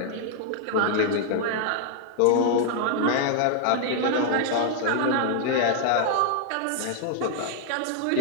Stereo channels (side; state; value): both; different; correlation 0.00